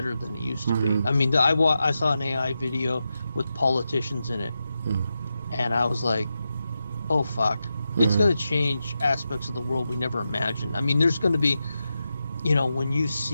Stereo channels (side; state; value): both; inverted; correlation -0.89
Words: than it used to be. I mean, I saw an AI video with politicians in it, and I was like, oh, fuck. It's going to change aspects of the world we never imagined. I mean, there's going to be, when you